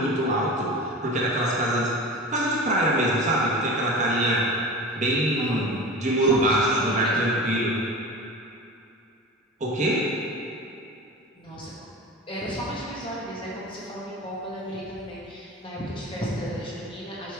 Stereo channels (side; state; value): both; normal; correlation 0.32